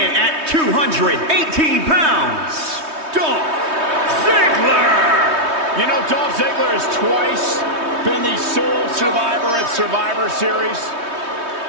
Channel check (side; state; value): left; late; 3.2 ms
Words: at 218 pounds, Dolph Ziggler. You know, Dolph Ziggler has twice been the sole survivor at Survivor Series.